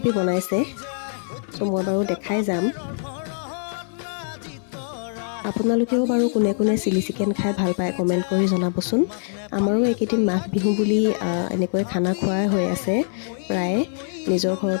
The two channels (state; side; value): silent; right; 55 dB below the other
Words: বনাইছে চ' মই বাৰু দেখাই যাম আপোনালোকেও বাৰু কোনে কোনে চিলি চিকেন খাই ভাল পায় কমেণ্ট কৰি জনাবচোন আমাৰো এইকেইদিন মাঘ বিহু বুলি এনেকৈ খানা খোৱাই হৈ আছে প্ৰায়ে নিজৰ